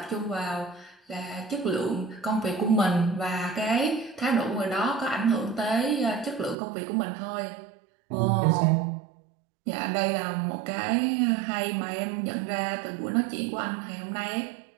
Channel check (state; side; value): drops out; left; at 6.6 s